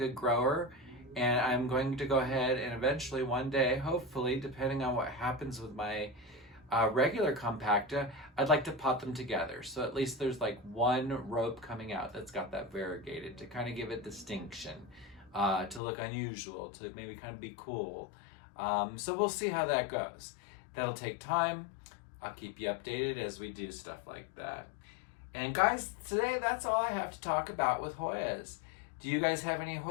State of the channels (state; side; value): drops out; right; at 15.8 s